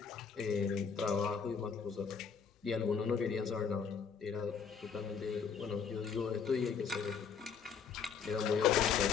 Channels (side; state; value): right; quieter; 6.4 dB